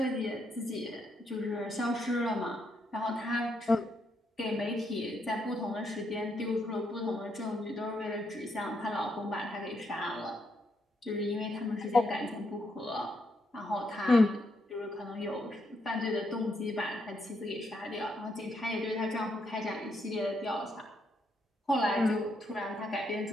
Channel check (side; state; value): both; normal; correlation 0.77